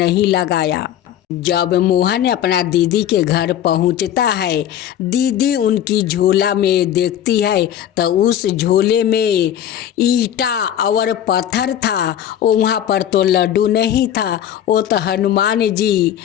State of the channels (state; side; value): quieter; right; 10.7 dB